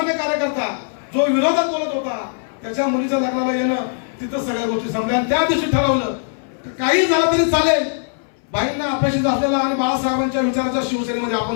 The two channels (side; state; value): right; silent; 66 dB below the other